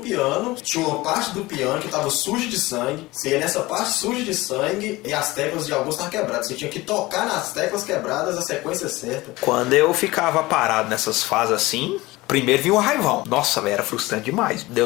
tinha uma parte do piano que estava suja de sangue, você ia nessa parte suja de sangue e as teclas de alguns estavam quebradas. Você tinha que tocar nas teclas quebradas a sequência certa. Quando eu ficava parado nessas fases assim, primeiro vinha o raivão. Nossa, velho, era frustrante demais.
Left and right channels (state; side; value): quieter; right; 20.2 dB